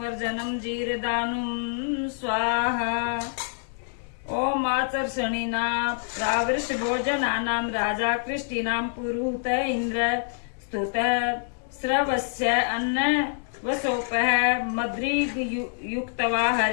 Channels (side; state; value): right; silent; 56 dB below the other